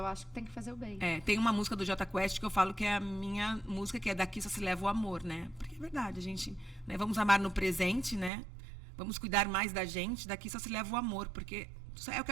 acho que tem que fazer o bem. Tem uma música do Jota Quest que eu falo que é a minha música, que é Daqui Só Se Leva o Amor, né? Porque é verdade, a gente... Né, vamos amar no presente, né? Vamos cuidar mais da gente. Daqui só se leva o amor, porque é o que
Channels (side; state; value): left; drops out; at 8.3 s